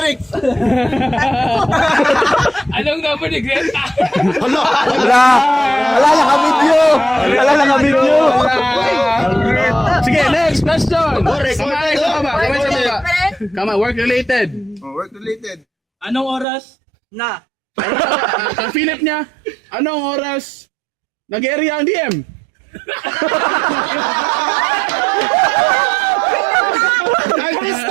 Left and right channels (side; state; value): left; drops out; at 16.4 s